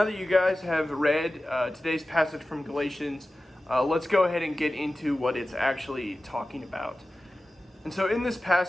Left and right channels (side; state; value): both; normal; correlation 0.95